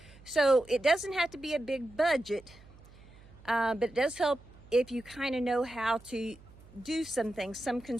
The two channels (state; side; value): noise; right; hum, 23 dB below the sound